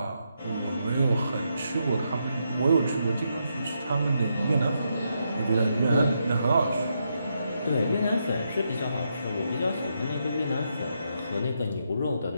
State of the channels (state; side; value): inverted; both; correlation -0.81